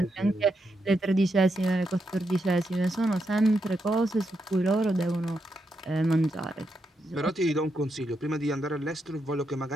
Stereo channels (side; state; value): both; normal; correlation 0.83